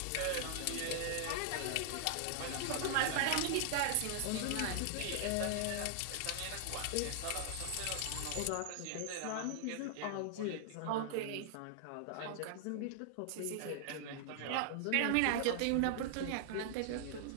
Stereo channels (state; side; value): different; both; correlation 0.00